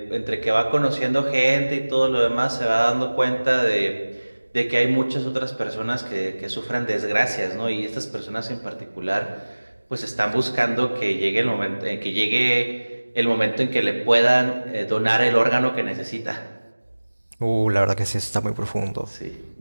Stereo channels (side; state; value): both; inverted; correlation -1.00